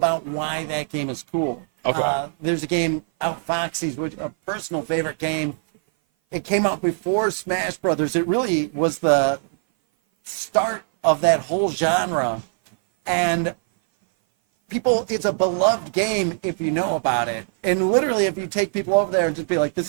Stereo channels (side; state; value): left; silent; 57 dB below the other